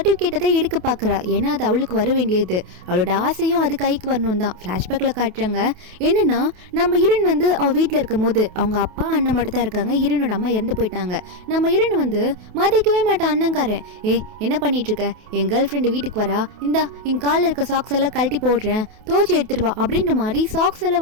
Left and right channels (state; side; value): late; left; 28 ms